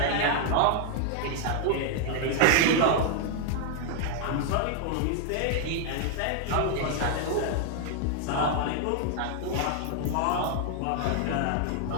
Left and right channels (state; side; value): different; both; correlation 0.00